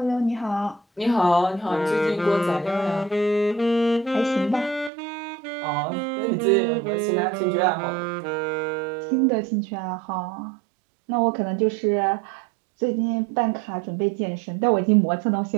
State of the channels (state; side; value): drops out; left; at 4.9 s